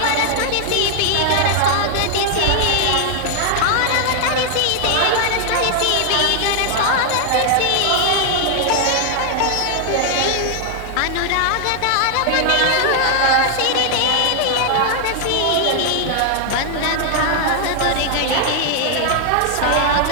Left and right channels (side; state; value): both; different; correlation 0.00